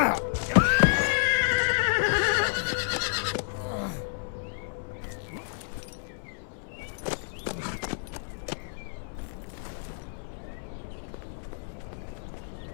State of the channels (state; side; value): silent; right; 58 dB below the other